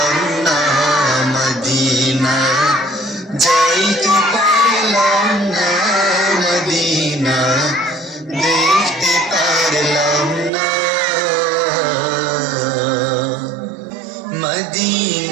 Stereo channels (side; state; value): left; drops out; at 10.5 s